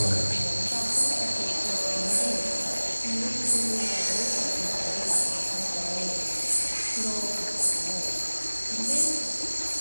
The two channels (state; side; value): inverted; both; correlation -1.00